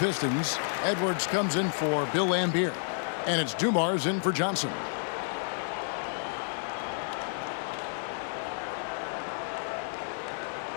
Edwards comes in for Bill Laimbeer. And it's Dumars in for Johnson.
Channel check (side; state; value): right; silent; digital silence